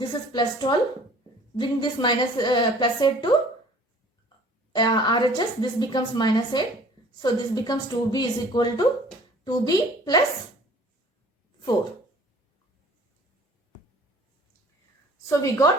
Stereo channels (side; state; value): both; normal; correlation 0.51